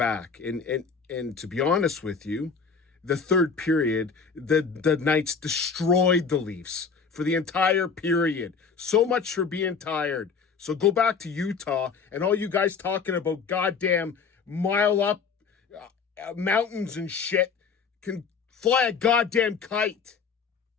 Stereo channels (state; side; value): quieter; right; 5.6 dB